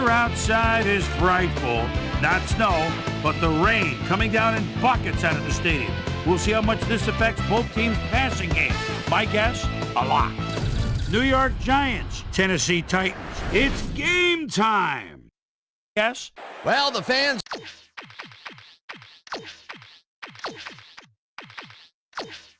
outside is frightful. Not snow, but the rain coming down in buckets out of the stadium. We'll see how much this affects both teams' passing game. My guess, a lot. New York Giants, Tennessee Titans. It's game time. Yes? Well, the fans...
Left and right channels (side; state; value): both; identical; correlation 1.00